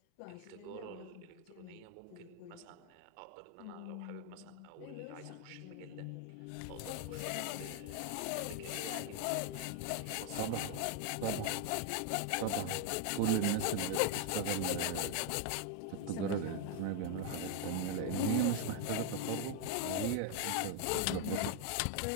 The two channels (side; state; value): both; different; correlation 0.00